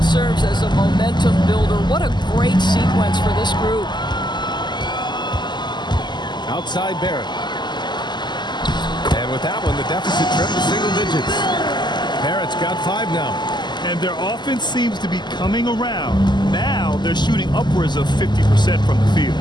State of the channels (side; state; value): right; late; 0.21 ms